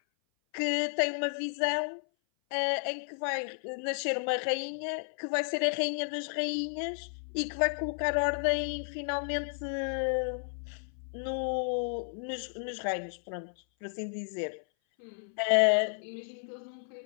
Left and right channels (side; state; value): right; silent; 56 dB below the other